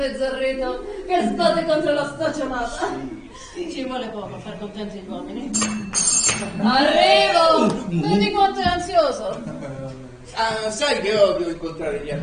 che sbatte contro la staccionata. Sì. Ci vuole poco per far contenti gli uomini. Arrivo! Vedi quanto è ansioso? Sai che odio incontrare gli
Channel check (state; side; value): identical; both; correlation 1.00